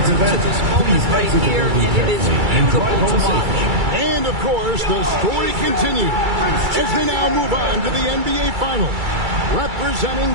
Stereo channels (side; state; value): left; late; 2.3 ms